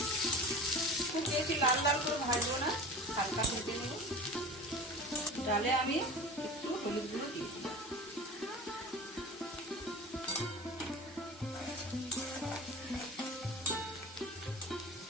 খুব বেশি লাল লাল করে ভাজবো না, হালকা ভেজে নেব। ডালে আমি একটু হলুদ গুঁড়ো দিয়েছিলাম।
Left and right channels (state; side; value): normal; both; correlation 0.35